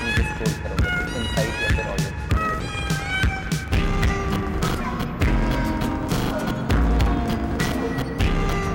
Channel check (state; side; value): identical; both; correlation 1.00